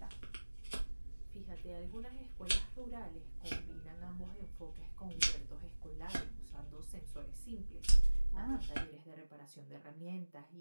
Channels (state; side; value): inverted; both; correlation -1.00